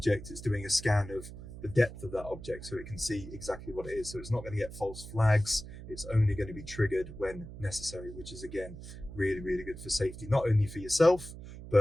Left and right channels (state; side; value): noise; right; hum, 13 dB below the sound